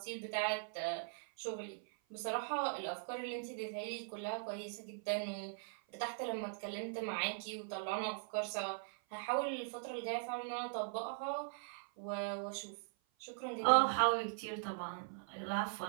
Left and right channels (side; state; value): left; silent; 51 dB below the other